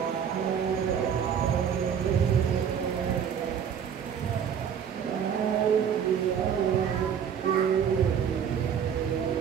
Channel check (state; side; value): quieter; left; 8.0 dB